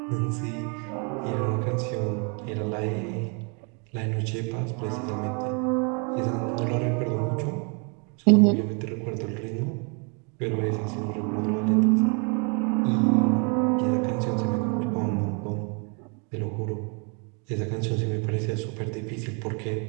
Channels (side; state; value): left; quieter; 36.0 dB